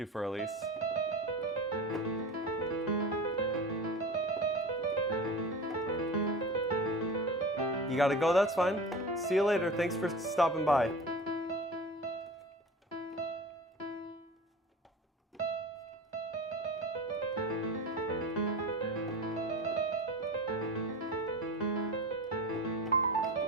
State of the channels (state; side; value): normal; both; correlation 0.32